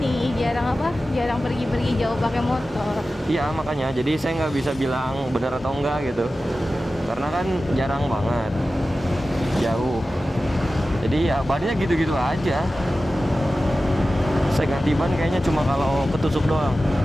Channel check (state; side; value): normal; both; correlation 0.94